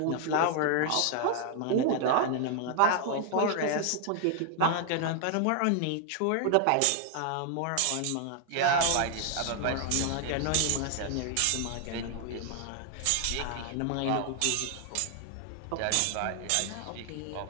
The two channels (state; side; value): different; both; correlation 0.00